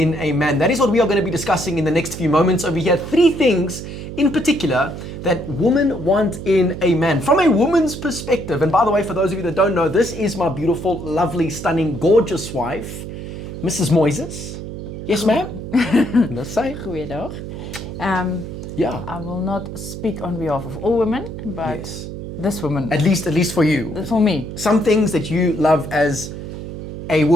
a man? That is what we are going to be discussing in the next few moments over here. 3 things in particular that women want in a man from a woman's perspective. And by the way, for those of you that don't know, this is my beautiful, lovely, stunning, gorgeous wife, Mrs. Moyses. Yes, ma'am? Let's say. Goeiedag. Yeah. I will not speak on behalf of all women, but Yes. this woman. At least for you. For me. Some things that you love as a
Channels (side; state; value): right; noise; hum, 9 dB below the sound